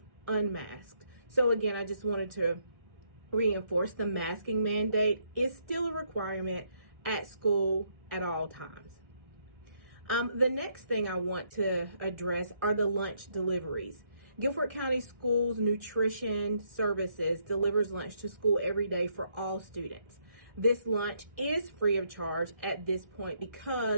unmasked. So again, I just wanted to reinforce the masking mandate is still a requirement at school at all times. The next thing I want to address are the lunch deliveries. Guilford County Schools Nutrition Services delivers lunch to school every day for all students. This lunch is free of charge at this point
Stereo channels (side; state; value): left; late; 1.6 ms